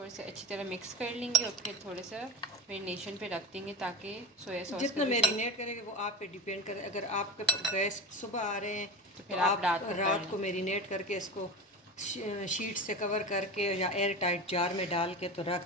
से अच्छी तरह मिक्स कर लेंगे और फिर थोड़ा सा मैरिनेशन पे रख देंगे, ताकि सोया सॉस जितना मैरिनेट करेंगे वो आप पे डिपेंड करे। अगर आपके गेस्ट सुबह आ रहे हैं तो फिर आप रात को मैरिनेट करके इसको शीट से कवर करके या एयर टाइट जार में डाल के तो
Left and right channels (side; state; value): both; normal; correlation 0.26